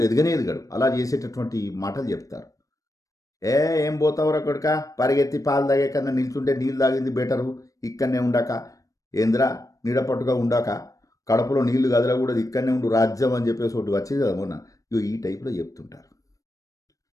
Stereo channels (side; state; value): right; late; 0.16 ms